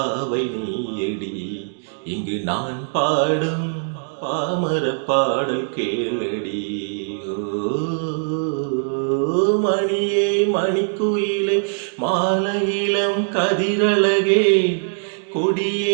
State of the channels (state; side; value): silent; left; digital silence